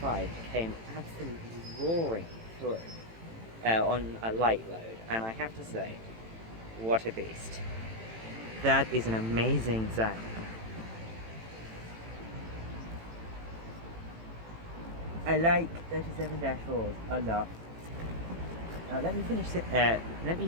came absolutely roaring through on a light load, and I have to say, what a beast. That is an amazing sound. I like 37-4s a lot. Now let me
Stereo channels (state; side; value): late; left; 18 ms